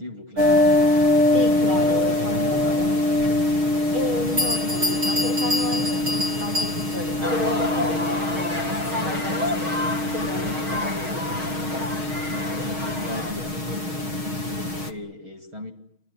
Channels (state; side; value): late; left; 6.4 ms